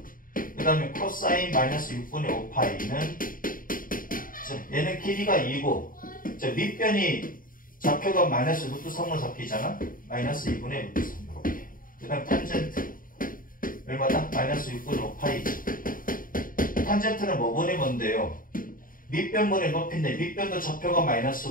1. 그 다음에 코사인 마이너스 6분의 5파이는 얘는 길이가 2고 밑변이 좌표가 마이너스 루트 3으로 잡히잖아. 마이너스 2분의 루트 3 이렇게. 그 다음 탄젠트 얼마다? 마이너스 6분의 5파이지. 탄젠트는 뭐분의 뭔데요? 밑변분의 높이인데 밑변도 좌표가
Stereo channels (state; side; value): late; right; 0.40 ms